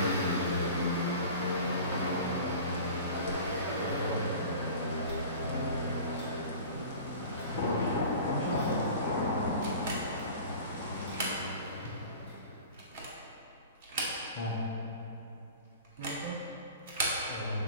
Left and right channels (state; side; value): inverted; both; correlation -0.40